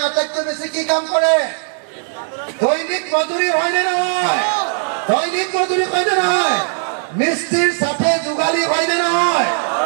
আটাইতকৈ বেছি কি কাম কৰে? দৈনিক মজুৰি, হয়নে নহয়? দৈনিক মজুৰি হয়নে নহয়? মিস্ত্ৰীৰ সাথে যোগালী হয়নে নহয়?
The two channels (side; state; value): left; silent; digital silence